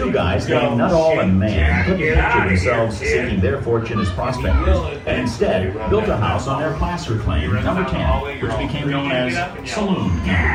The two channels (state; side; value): identical; both; correlation 1.00